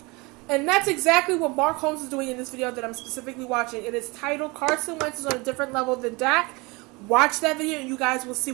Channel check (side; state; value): left; quieter; 25.8 dB